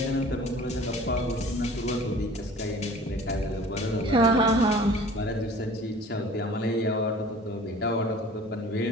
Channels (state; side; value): normal; both; correlation 0.46